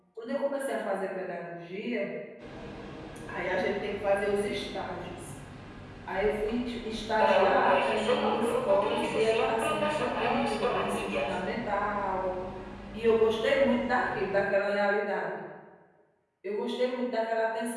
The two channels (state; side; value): identical; both; correlation 1.00